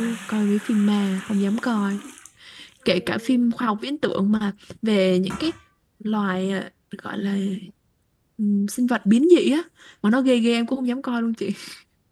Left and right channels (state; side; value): identical; both; correlation 1.00